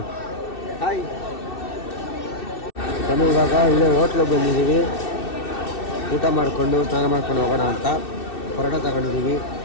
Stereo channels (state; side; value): late; right; 2.6 ms